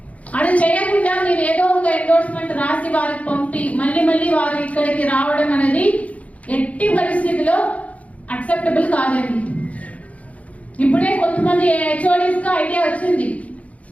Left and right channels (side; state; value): right; late; 0.067 ms